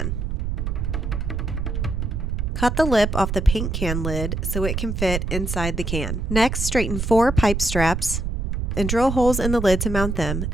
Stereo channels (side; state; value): right; noise; rumble, 2 dB below the sound